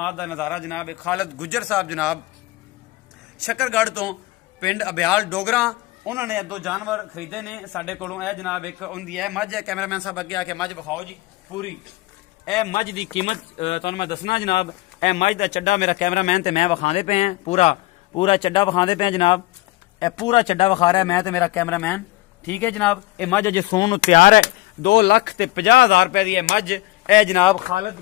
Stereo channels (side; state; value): right; quieter; 19.5 dB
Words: का नज़ारा जनाब खालिद गुज्जर साहब जनाब शकरगढ़ तो पिंड अब्याल डोगरा उन्होंने दो जानवर खरीदे ने साडे कोलों। यह जनाब एक उनकी है मझ है, कैमरामैन साहब अगे आके मझ विखाओ जी पूरी। यह मझ की कीमत तुहानूं मैं दसना जनाब। यह मझ का चड्डा मेरा कैमरामैन ते मैं विखांदे पे हैं, पूरा पूरा चड्डा विखांदे पे हैं जनाब। यह पूरा चड्डा विखा रहा है मैं ते मेरा कैमरामैन, ठीक है जनाब। यह मझ अजे सोन तैयार है। 2,50,000 रुपए की मझ यह जनाब